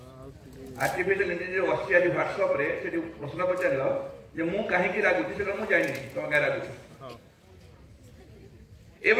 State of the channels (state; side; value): identical; both; correlation 1.00